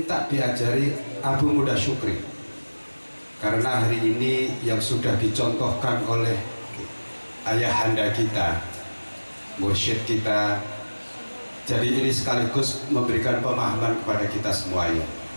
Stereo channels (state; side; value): inverted; both; correlation -1.00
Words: diajari Abu Muda Syukri. Karena hari ini yang sudah dicontohkan oleh ayahanda kita, mursyid kita, jadi ini sekaligus memberikan pemahaman kepada kita semuanya.